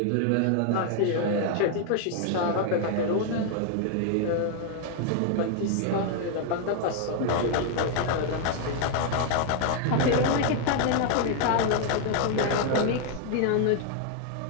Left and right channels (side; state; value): both; different; correlation 0.00